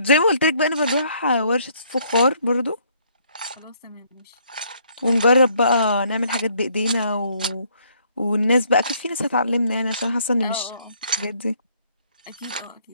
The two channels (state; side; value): inverted; both; correlation -0.66